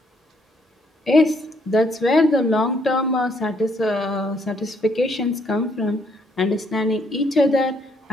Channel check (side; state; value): both; normal; correlation 0.70